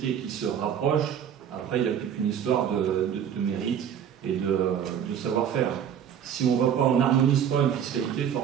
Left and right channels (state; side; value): quieter; left; 8.8 dB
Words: qui se rapproche, après il n'y a plus qu'une histoire de mérite et de savoir-faire. Si on n'harmonise pas une fiscalité,